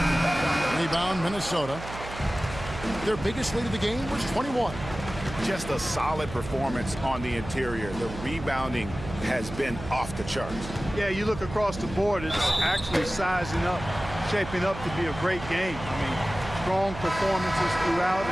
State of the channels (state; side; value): noise; right; hum, 11 dB below the sound